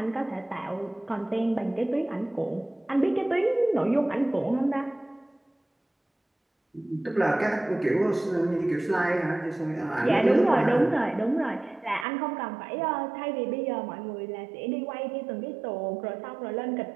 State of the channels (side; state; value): left; drops out; at 12.1 s